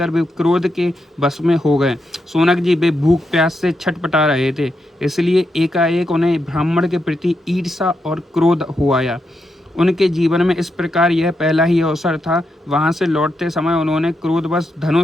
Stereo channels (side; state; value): both; normal; correlation 0.84